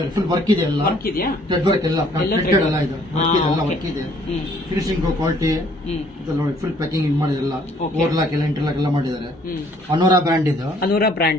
ಫುಲ್ ವರ್ಕ್ ಇದೆ, ಎಲ್ಲ ವರ್ಕ್ ಇದೆಯಾ? ಥ್ರೆಡ್ ವರ್ಕ್ ಎಲ್ಲ ಎಲ್ಲ ಇದು ವರ್ಕ್ ಇದೆ. ಫಿನಿಶಿಂಗ್ ಕ್ವಾಲಿಟಿ ನೋಡಿ, ಫುಲ್ ಪ್ಯಾಕಿಂಗ್ ಮಾಡಿದೆಲ್ಲ, ಓವರ್ಲಾಕ್ ಎಲ್ಲ ಇಂಟರ್ಲಾಕ್ ಎಲ್ಲ ಮಾಡಿದ್ದಾರೆ. ಅನೋರಾ ಬ್ರ್ಯಾಂಡ್ ಇದು. ಅನೋರಾ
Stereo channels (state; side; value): normal; both; correlation 0.61